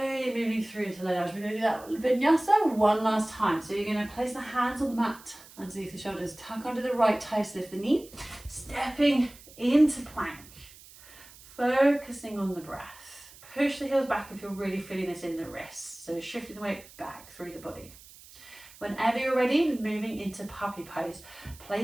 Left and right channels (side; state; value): right; noise; hiss, 21 dB below the sound